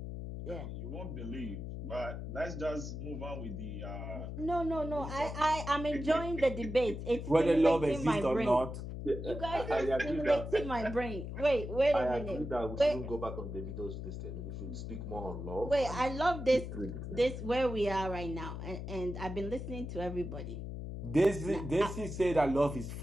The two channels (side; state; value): left; noise; hum, 7 dB below the sound